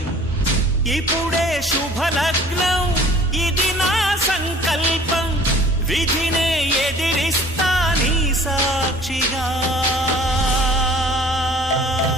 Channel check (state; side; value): normal; both; correlation 0.50